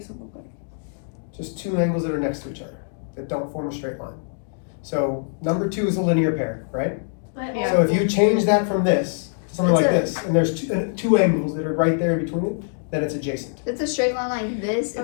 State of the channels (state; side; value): silent; right; digital silence